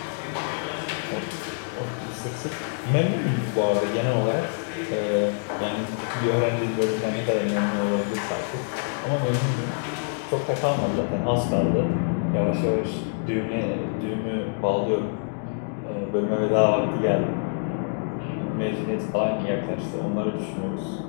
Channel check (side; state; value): right; silent; digital silence